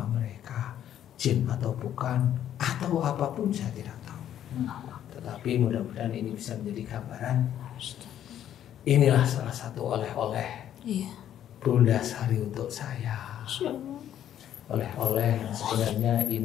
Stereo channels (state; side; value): quieter; right; 10.8 dB